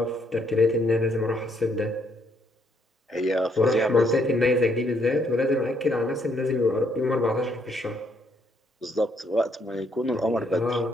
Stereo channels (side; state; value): both; normal; correlation 0.71